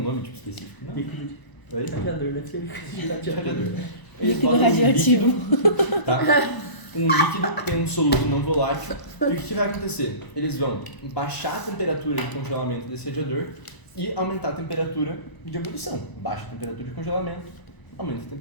nome tipo específico? Não? Líquido Oi? de radiador, deve ser De radiador. Eles Líquido botam um radioativo. líquido, tá? Um líquido que tem um soluto não volátil. E o que vai acontecer? Eles vão baixar a temperatura de congelamento desse radiador e aumentar a temperatura de ebulição. Baixa a temperatura de congelamento, aumenta a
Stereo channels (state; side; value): late; right; 1.0 ms